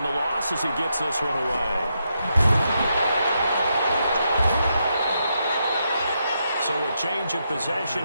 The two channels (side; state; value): both; inverted; correlation -0.82